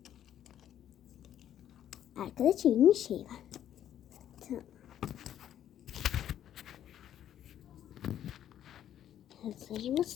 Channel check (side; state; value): right; quieter; 10.9 dB